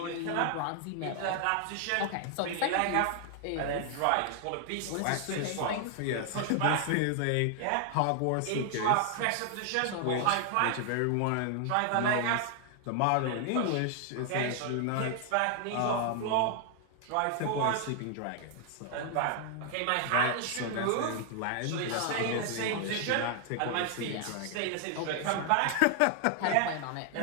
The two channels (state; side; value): different; both; correlation 0.00